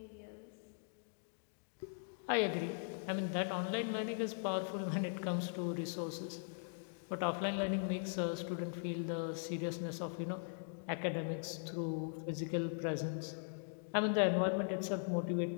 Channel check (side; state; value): right; silent; digital silence